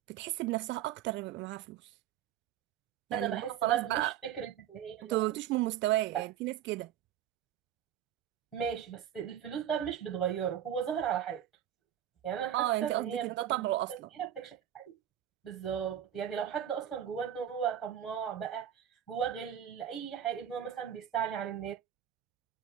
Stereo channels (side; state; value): left; quieter; 10.6 dB